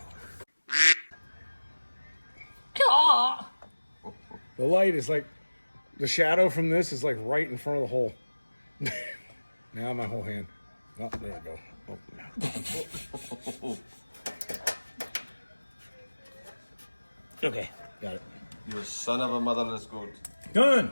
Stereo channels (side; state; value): both; inverted; correlation -1.00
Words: The light is like, the shadow from this is like right in front of the hole. Now my whole hand. Oh, there we go. Oh, no. Okay, got it. You son of a motherless goat. Done!